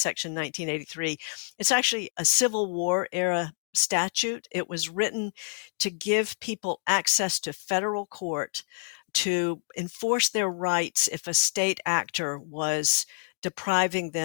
1983. It's actually a Civil War era statute. It was written to give people access to federal court to enforce their rights if a state actor was depriving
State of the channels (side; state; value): right; silent; digital silence